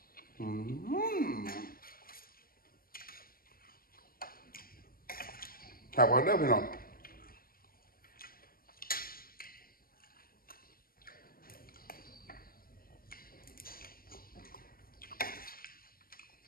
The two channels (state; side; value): late; right; 0.43 ms